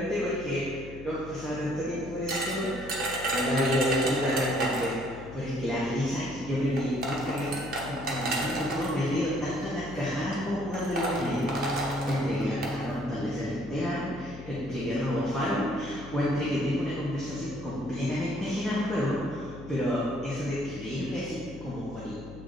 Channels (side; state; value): left; noise; hum, 13 dB below the sound